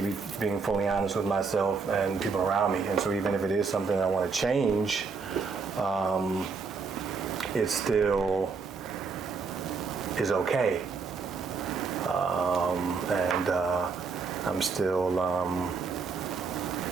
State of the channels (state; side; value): quieter; left; 4.9 dB